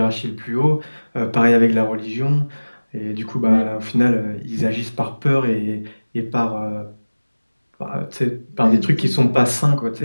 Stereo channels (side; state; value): both; inverted; correlation -1.00